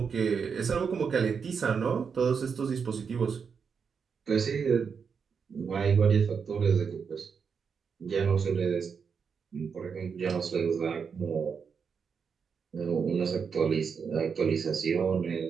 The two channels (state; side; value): quieter; left; 6.2 dB